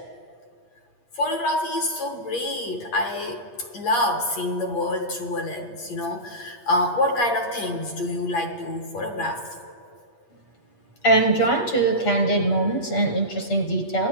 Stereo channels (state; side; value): late; right; 8.4 ms